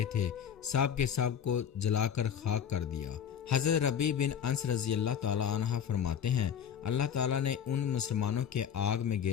تھے سب کے سب کو جلا کر خاک کر دیا۔ حضرت ربیع بن انس رضی اللہ تعالیٰ عنہ فرماتے ہیں، اللہ تعالیٰ نے ان مسلمانوں کے آگ میں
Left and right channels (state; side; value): quieter; right; 8.3 dB